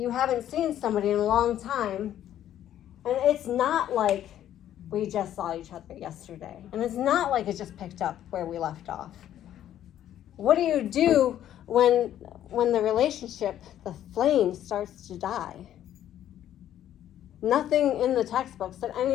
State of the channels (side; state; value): right; quieter; 11.4 dB